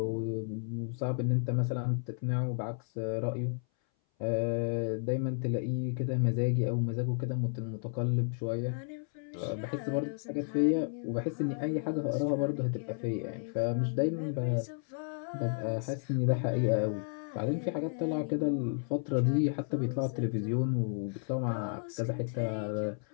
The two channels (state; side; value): silent; right; 56 dB below the other